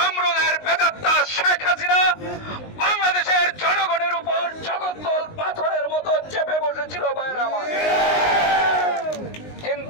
প্রেতাত্মা শেখ হাসিনা বাংলাদেশের জনগণের উপর জগদ্দল পাথরের মতো চেপে বসেছিল ভাইরা আমার।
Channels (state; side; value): late; right; 19 ms